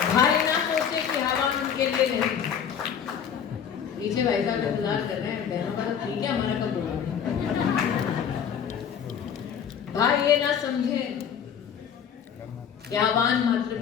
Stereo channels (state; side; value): quieter; right; 8.0 dB